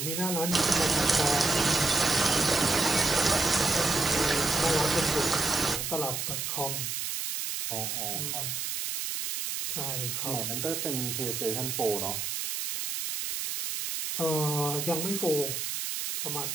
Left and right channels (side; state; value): right; noise; hiss, 3 dB below the sound